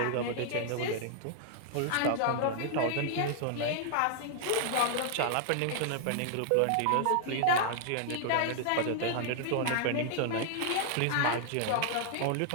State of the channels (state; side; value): different; both; correlation 0.00